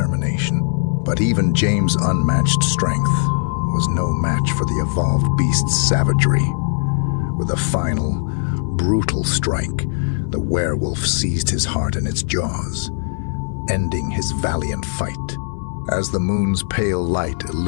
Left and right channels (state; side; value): silent; right; 60 dB below the other